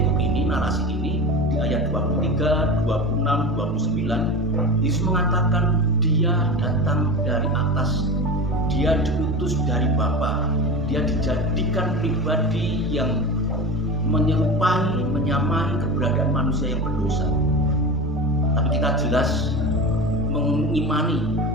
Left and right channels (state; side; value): normal; both; correlation 0.27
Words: ini, narasi ini, di ayat 23, 26, 29, Yesus mengatakan Dia datang dari atas, Dia diutus dari Bapa, Dia dijadikan pribadi yang menyerupai, menyamai keberadaan manusia yang berdosa. Tapi kita jelas mengimani